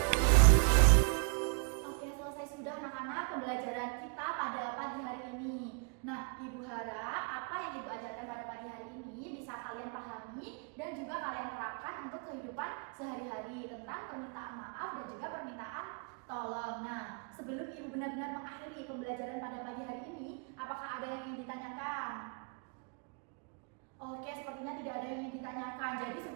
Oke, selesai sudah anak-anak pembelajaran kita pada pagi hari ini. Nah, Ibu harap apa yang Ibu ajarkan pada pagi hari ini bisa kalian pahami dan juga kalian terapkan untuk kehidupan sehari-hari tentang permintaan maaf dan juga permintaan tolong. Nah, sebelum Ibu benar-benar mengakhiri pembelajaran pada pagi hari ini, apakah ada yang ingin ditanyakan? Oke, sepertinya tidak ada yang ingin ditanyakan. Jadi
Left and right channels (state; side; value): quieter; left; 39.2 dB